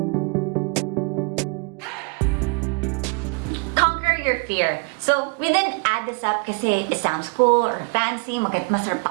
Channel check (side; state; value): left; quieter; 37.1 dB